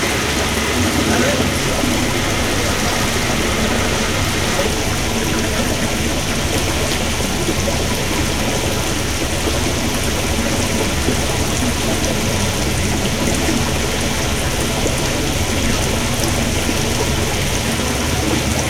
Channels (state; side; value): identical; both; correlation 1.00